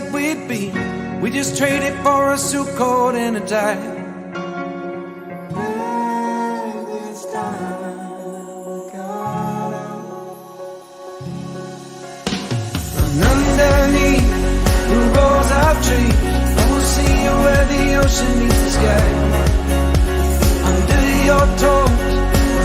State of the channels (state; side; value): identical; both; correlation 1.00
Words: we'd be, we just traded for a suit coat and a tie. And underneath the rows of trees, I will see you where the ocean meets the sky. Under your toes, the